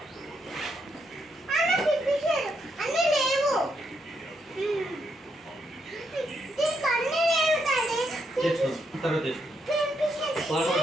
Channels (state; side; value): normal; both; correlation 0.78